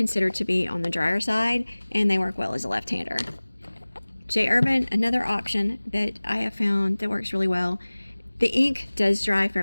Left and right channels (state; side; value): inverted; both; correlation -1.00